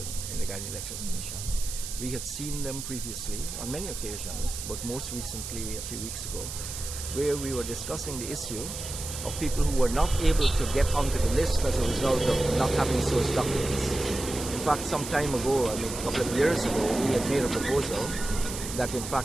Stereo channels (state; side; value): noise; right; hiss, 8 dB below the sound